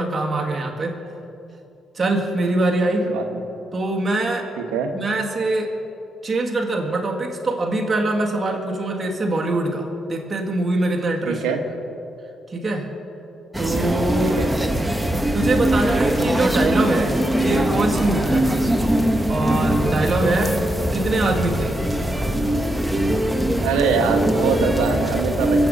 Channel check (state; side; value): normal; both; correlation 0.83